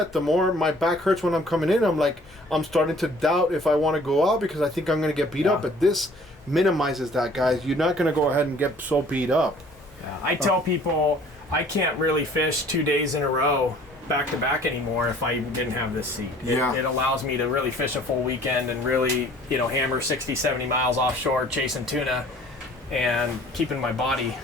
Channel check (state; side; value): normal; both; correlation 0.53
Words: the more my back hurts when I'm coming in. I'm starting to doubt if I want to go out because I think I'm gonna get beat up. But this minimizes that, guys. You're not gonna go ahead and get so beat up. Yeah, I tell people I can't really fish 2 days in a row back to back anymore if I didn't have this seat. It allows me to really fish a full weekend and really hammer 60-70 miles offshore chasing tuna and keeping my body.